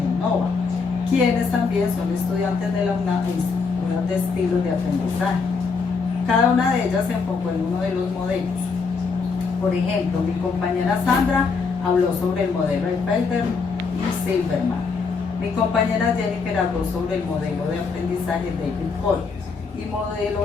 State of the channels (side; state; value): right; quieter; 4.8 dB